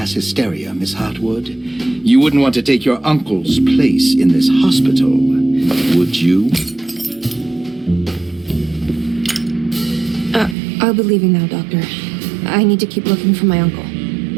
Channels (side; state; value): left; drops out; at 10.6 s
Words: hysteria, Miss Hartwood. You wouldn't want to take your uncle's place in this hospital, would you? I'll be leaving now, Doctor. I need to keep looking for my uncle.